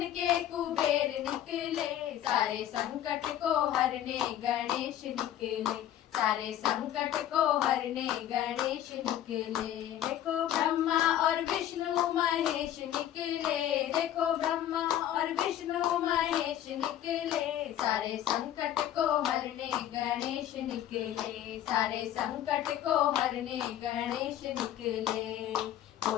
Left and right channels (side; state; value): right; quieter; 11.7 dB